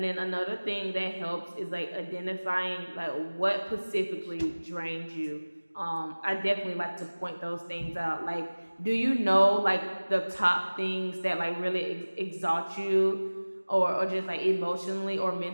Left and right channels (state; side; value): inverted; both; correlation -1.00